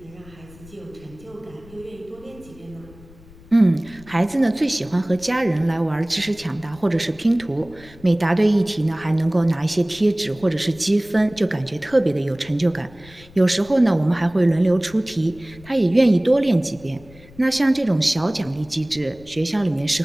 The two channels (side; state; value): left; noise; rumble, 23 dB below the sound